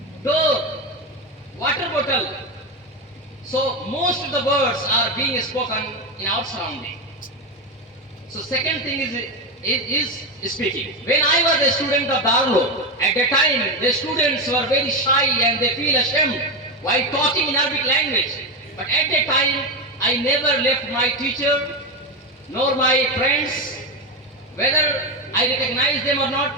door, water bottle. So most of the words are being spoken in our surrounding. So second thing is speaking. When I was a student of Darlo, at that time the students were very shy and they feel ashamed while talking in Arabic language. But at that time I never left my teacher nor my friends, whether I recognize them or not.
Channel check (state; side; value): normal; both; correlation 0.12